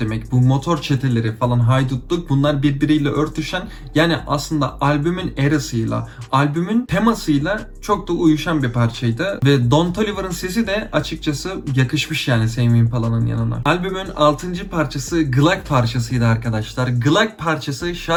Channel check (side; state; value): both; identical; correlation 1.00